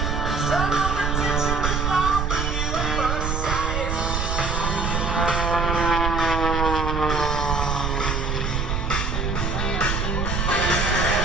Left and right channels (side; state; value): right; noise; rumble, 1 dB below the sound